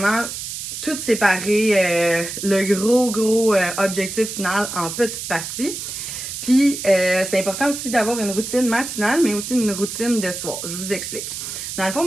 tout séparer le gros objectif final en petites parties. Puis, c'est important aussi d'avoir une routine matinale, mais aussi une routine de soir. Je vous explique. Dans le fond,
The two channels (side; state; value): right; noise; hiss, 7 dB below the sound